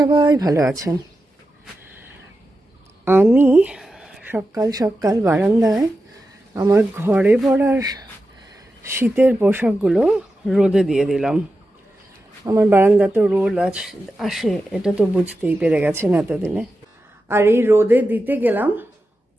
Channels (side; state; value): both; normal; correlation 0.91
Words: ভালো আছেন। আমি সকাল সকাল বারান্দায় আমার ঘরে পড়ার শীতের পোশাকগুলো রোদে দিয়ে দিলাম। আমার বারান্দাতেও রোদ আসে, এটা তো বুঝতেই পেরে গেছেন এতদিনে। আর এই রোদে দিতে গেলাম।